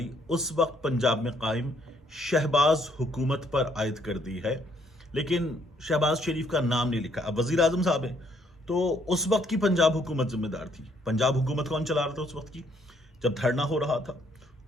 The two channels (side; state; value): both; normal; correlation 0.68